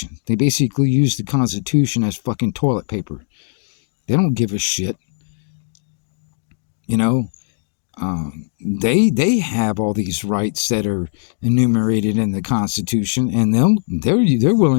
They basically use the Constitution as fucking toilet paper. They don't give a shit. They have all these rights that are enumerated in the Constitution, and they're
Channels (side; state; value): right; silent; 64 dB below the other